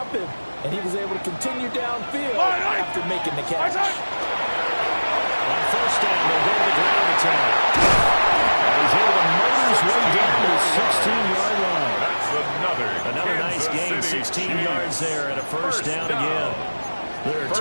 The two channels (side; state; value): both; inverted; correlation -1.00